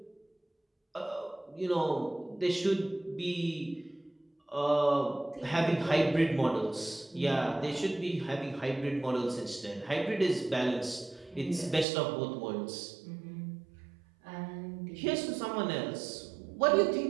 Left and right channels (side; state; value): left; drops out; at 11.9 s